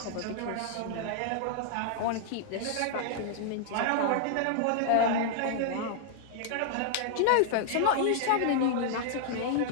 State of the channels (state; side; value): different; both; correlation -0.01